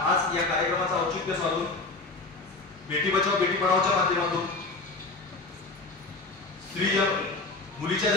या कार्यक्रमाचा औचित्य साधून बेटी बचाओ बेटी पढाओच्या माध्यमातून मुलीच्या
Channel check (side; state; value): right; quieter; 3.5 dB